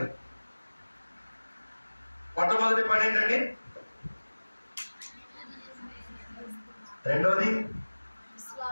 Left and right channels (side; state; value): both; inverted; correlation -1.00